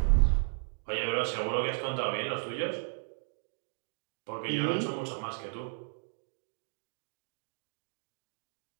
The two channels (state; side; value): silent; left; 55 dB below the other